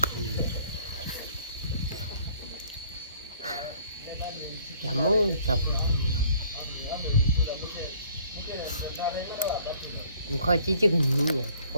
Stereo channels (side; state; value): both; inverted; correlation -0.58